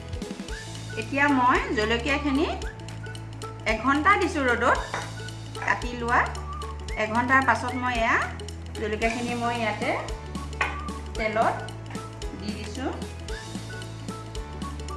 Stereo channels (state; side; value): identical; both; correlation 1.00